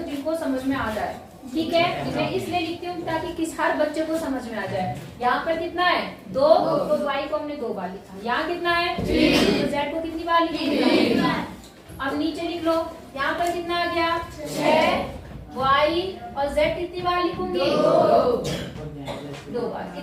जिनको समझ में आ जाए, ठीक है। मैं इसलिए लिखती हूँ ताकि किस हर बच्चे को समझ में आ जाए। यहाँ पर कितना है 2, तो y को हमने 2 बार लिखा। यहाँ कितना है 3, तो z को कितनी बार लिखा। अब नीचे लिख लो, यहाँ पर कितना आ गया 6, y और z कितनी बार लिखूंगी 2 बार।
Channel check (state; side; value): identical; both; correlation 1.00